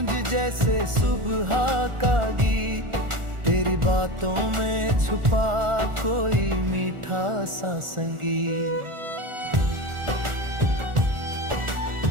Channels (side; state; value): left; late; 1.4 ms